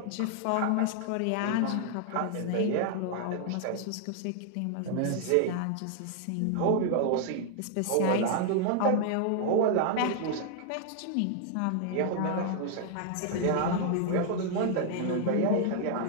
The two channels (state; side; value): different; both; correlation 0.00